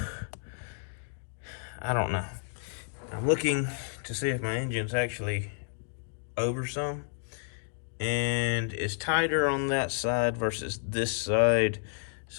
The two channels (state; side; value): silent; right; digital silence